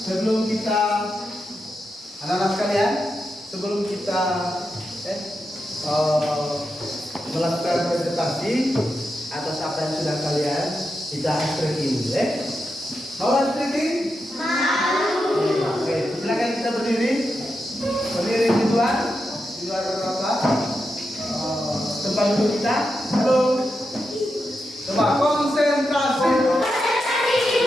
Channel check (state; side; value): normal; both; correlation 0.87